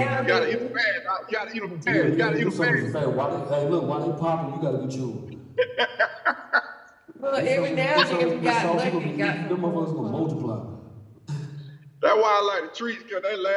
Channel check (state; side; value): identical; both; correlation 1.00